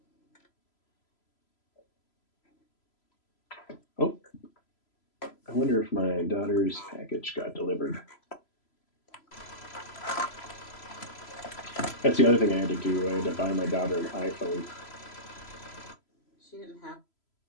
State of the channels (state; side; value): late; right; 3.0 ms